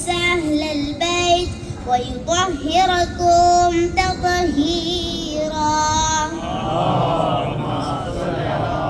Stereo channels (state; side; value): identical; both; correlation 1.00